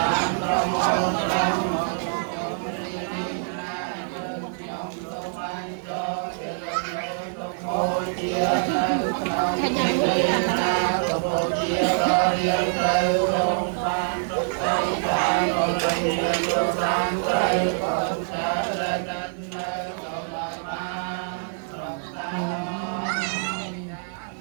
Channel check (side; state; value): left; silent; 60 dB below the other